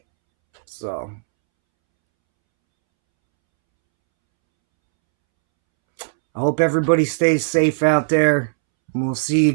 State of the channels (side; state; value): left; silent; 67 dB below the other